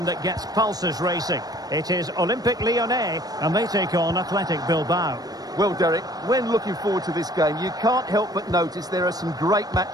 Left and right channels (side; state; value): left; late; 0.19 ms